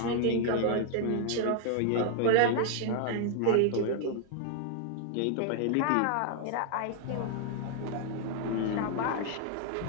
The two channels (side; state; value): both; different; correlation 0.00